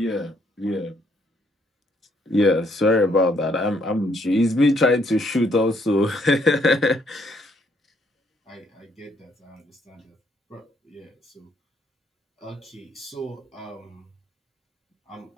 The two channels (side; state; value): both; normal; correlation 0.70